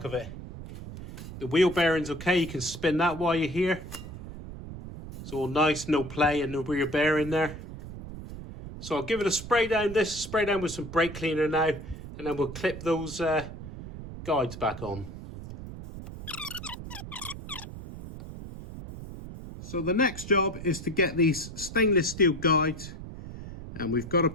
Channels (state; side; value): noise; right; rumble, 11 dB below the sound